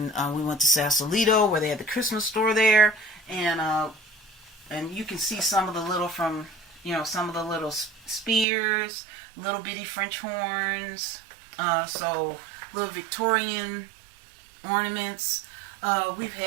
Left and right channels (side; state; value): left; drops out; at 8.5 s